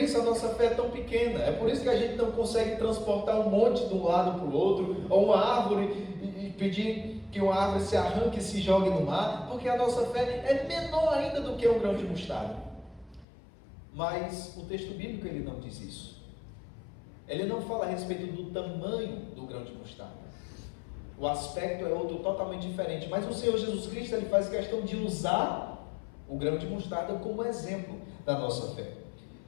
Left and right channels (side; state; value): right; drops out; at 13.2 s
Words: a nossa fé é tão pequena, é por isso que a gente não consegue transportar um monte de um lado para o outro, ou uma árvore e pedir que uma árvore se arranque e se jogue no mar, porque a nossa fé é menor ainda do que um grão de mostarda. Mas o texto bíblico ele não diz isso. Ele não fala a respeito do tamanho do grão de mostarda. O aspecto é outro totalmente diferente, mas o Senhor Jesus Cristo ele faz questão de usar o grão de mostarda como exemplo da nossa fé.